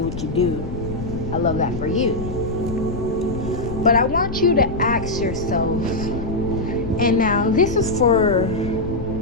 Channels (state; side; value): noise; left; rumble, 7 dB below the sound